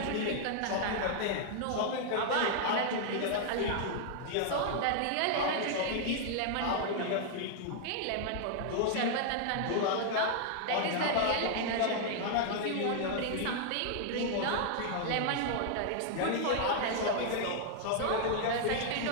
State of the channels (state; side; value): different; both; correlation 0.00